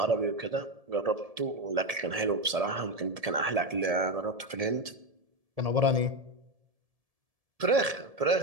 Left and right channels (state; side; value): late; left; 1.7 ms